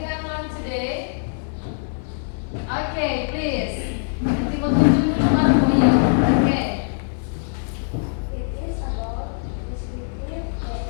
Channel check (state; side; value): silent; right; digital silence